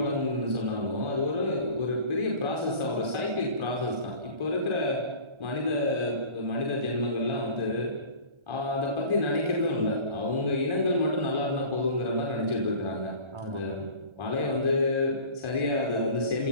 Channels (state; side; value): late; left; 1.3 ms